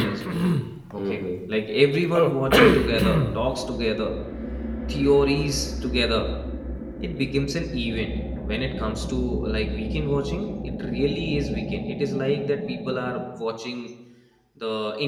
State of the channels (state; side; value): identical; both; correlation 1.00